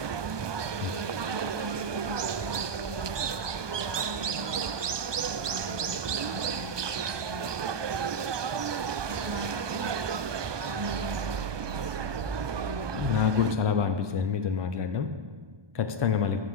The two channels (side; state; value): left; late; 1.2 ms